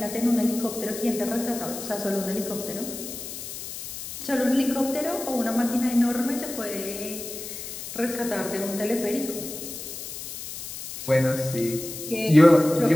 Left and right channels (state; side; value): noise; left; hiss, 9 dB below the sound